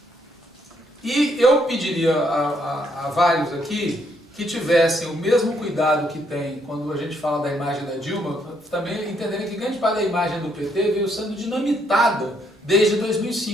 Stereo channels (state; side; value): normal; both; correlation 0.72